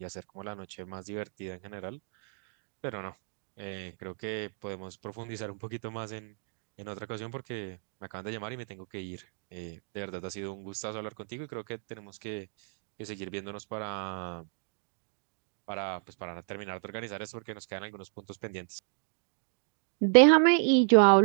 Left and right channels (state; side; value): silent; left; 56 dB below the other